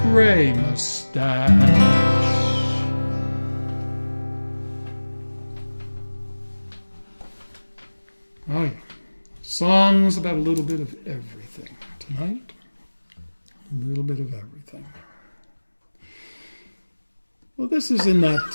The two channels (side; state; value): both; inverted; correlation -1.00